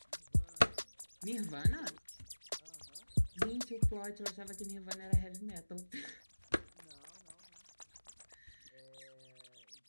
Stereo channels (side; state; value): both; inverted; correlation -1.00